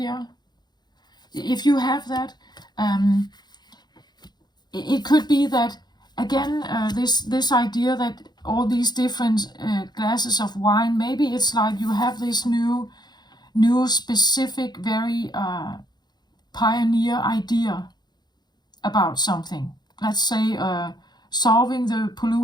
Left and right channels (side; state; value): right; late; 0.21 ms